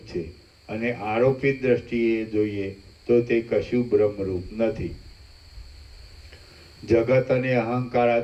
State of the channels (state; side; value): identical; both; correlation 1.00